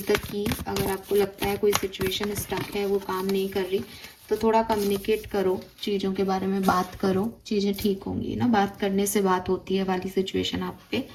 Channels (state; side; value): identical; both; correlation 1.00